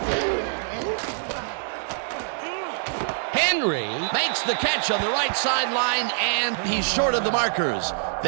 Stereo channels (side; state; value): left; silent; digital silence